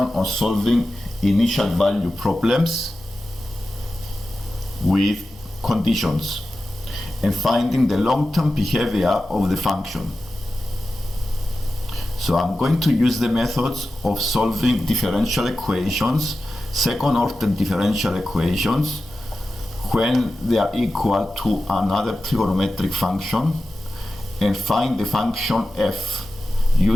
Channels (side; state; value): both; normal; correlation 0.93